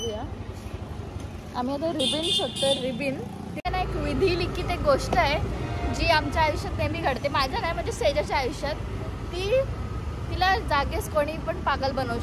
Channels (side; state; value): both; identical; correlation 1.00